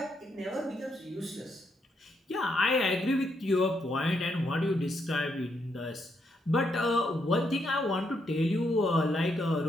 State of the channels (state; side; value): normal; both; correlation 0.78